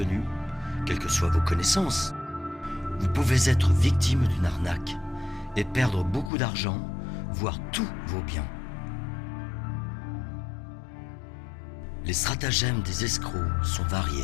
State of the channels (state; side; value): drops out; right; at 6.3 s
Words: quelles que soient vos connaissances, vous pouvez être victime d'une arnaque et perdre beaucoup d'argent, voire tous vos biens. Les stratagèmes des escrocs sont